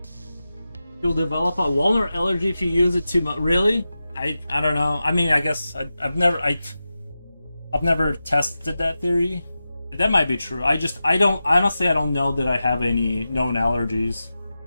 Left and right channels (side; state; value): both; inverted; correlation -0.93